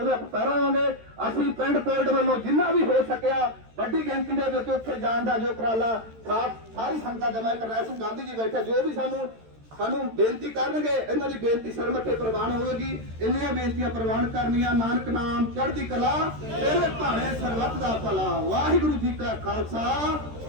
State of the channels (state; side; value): late; left; 13 ms